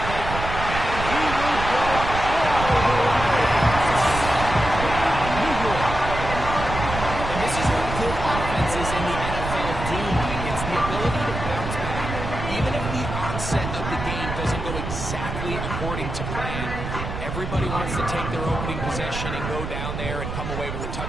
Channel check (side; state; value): right; noise; rumble, 6 dB below the sound